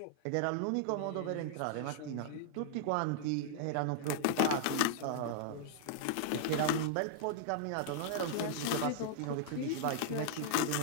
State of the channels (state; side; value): different; both; correlation -0.01